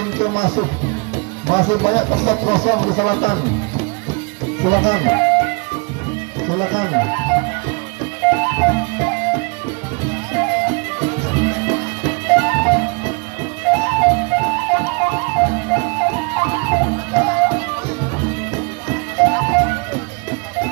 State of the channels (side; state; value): left; quieter; 32.7 dB